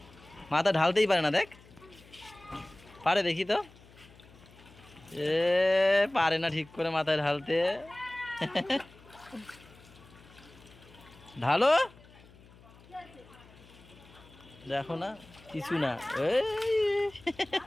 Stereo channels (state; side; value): noise; left; hum, 24 dB below the sound